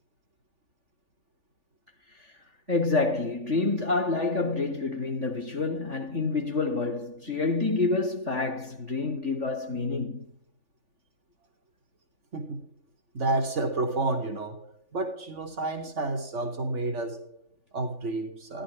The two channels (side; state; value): left; late; 3.5 ms